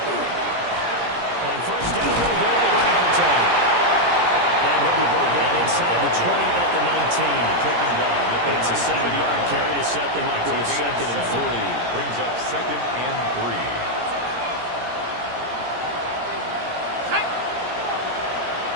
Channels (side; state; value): left; late; 17 ms